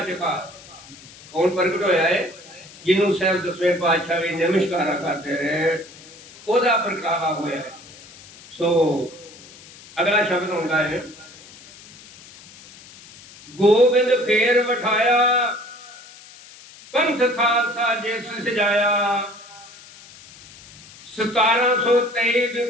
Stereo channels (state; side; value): noise; left; hiss, 20 dB below the sound